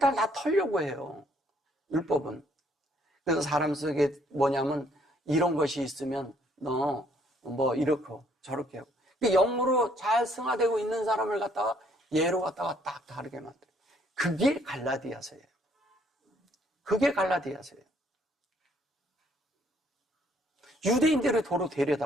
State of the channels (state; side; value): normal; both; correlation 0.65